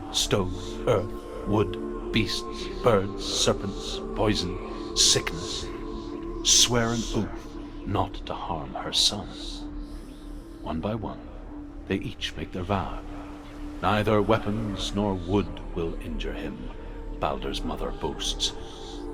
stone, earth, wood, beasts, birds, serpents, poison, sickness, swear an oath not to harm her son. One by one, they each make their vow. Neither weapons nor wood will injure him, Balder's mother boasts.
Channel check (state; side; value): identical; both; correlation 1.00